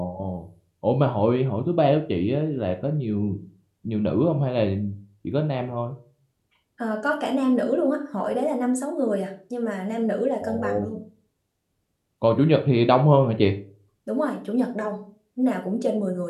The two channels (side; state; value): both; identical; correlation 1.00